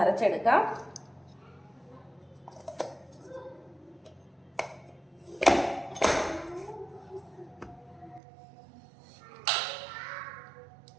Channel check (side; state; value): left; drops out; at 8.2 s